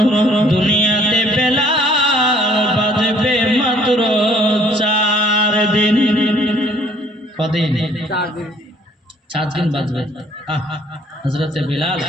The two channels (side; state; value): both; normal; correlation 0.59